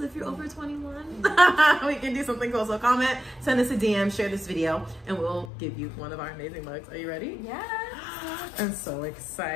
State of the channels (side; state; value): right; drops out; at 5.5 s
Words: if you're over 21. We can do something cool. So comment, send us a DM, share this video, and we'll give you one of our amazing mugs. Are you ready? Yeah. I'm so